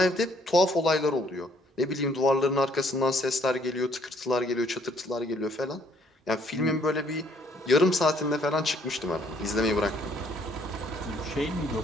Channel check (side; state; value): both; normal; correlation 0.65